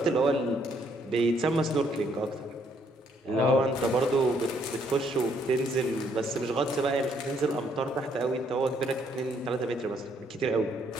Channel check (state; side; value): normal; both; correlation 0.69